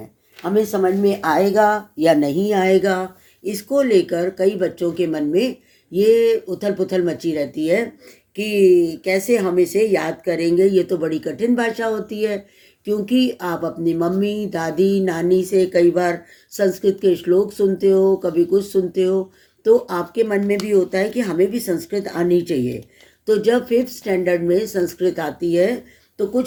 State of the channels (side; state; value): both; identical; correlation 1.00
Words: हमें समझ में आएगा या नहीं आएगा। इसको लेकर कई बच्चों के मन में ये उथल पुथल मची रहती है कि कैसे हम इसे याद करेंगे। ये तो बड़ी कठिन भाषा होती है, क्योंकि आप अपनी मम्मी, दादी, नानी से कई बार संस्कृत के श्लोक सुनते हो, कभी कुछ सुनते हो, तो आपके मन में भी होता है कि हमें भी संस्कृत आनी चाहिए। तो जब 5th स्टैंडर्ड में संस्कृत आती है तो